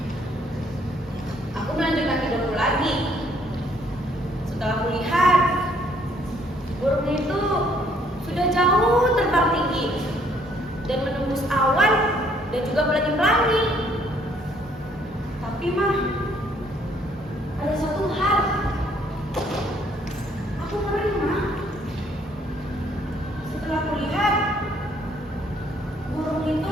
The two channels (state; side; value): normal; both; correlation 0.65